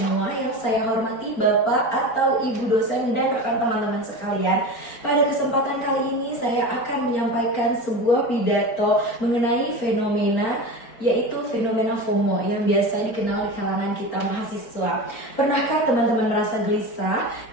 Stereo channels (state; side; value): late; right; 4.4 ms